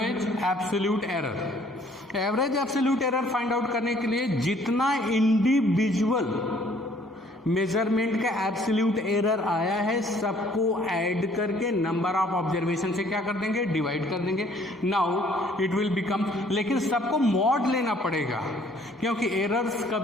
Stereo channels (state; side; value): normal; both; correlation 0.60